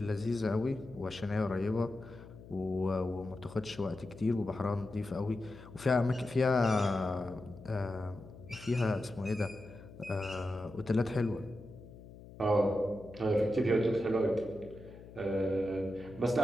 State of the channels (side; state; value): left; noise; hum, 17 dB below the sound